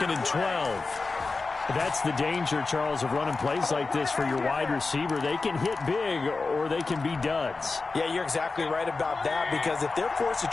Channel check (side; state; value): right; quieter; 3.9 dB